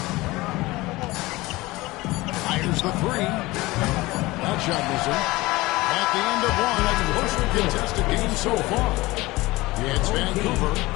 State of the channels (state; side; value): quieter; right; 20.3 dB